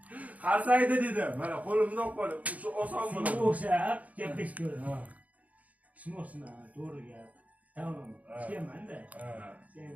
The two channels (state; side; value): late; left; 0.072 ms